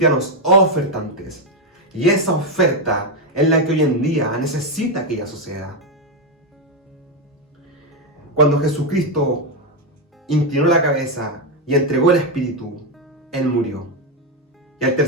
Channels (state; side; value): normal; both; correlation 0.05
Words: ofertantes. Y esa oferta es la que hoy en día necesita aquella sociedad. Cuando Jesucristo inclinó la cabeza y entregó el Espíritu, Él murió. Y al